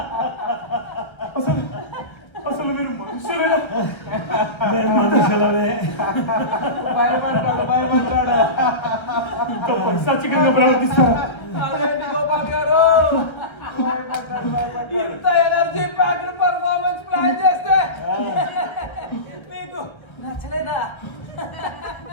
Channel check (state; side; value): late; right; 1.3 ms